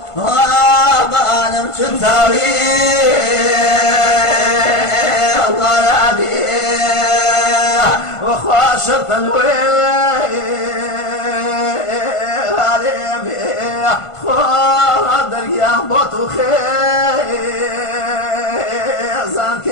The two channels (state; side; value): late; right; 1.5 ms